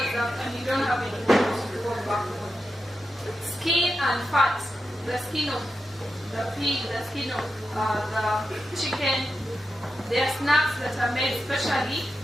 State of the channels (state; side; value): normal; both; correlation 0.89